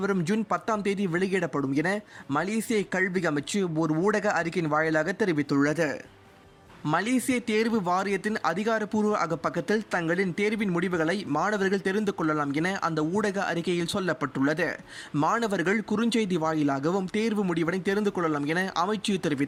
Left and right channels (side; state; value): both; identical; correlation 1.00